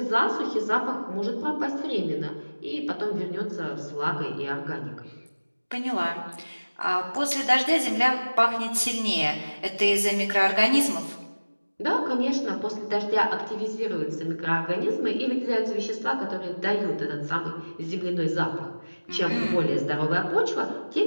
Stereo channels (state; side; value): inverted; both; correlation -1.00